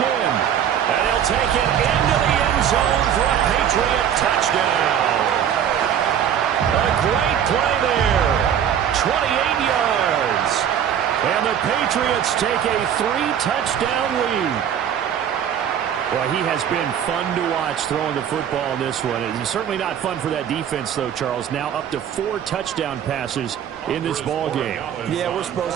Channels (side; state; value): left; quieter; 9.2 dB